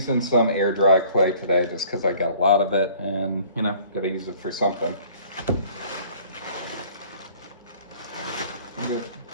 some air dry clay today just because I got a lot of it and gotta use it for something.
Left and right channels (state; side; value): inverted; both; correlation -0.54